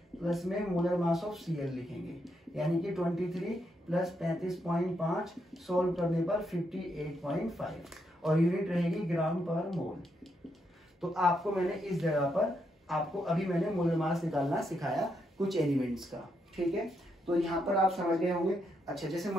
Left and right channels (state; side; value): normal; both; correlation 0.79